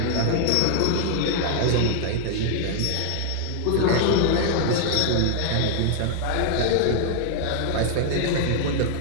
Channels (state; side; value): different; both; correlation 0.00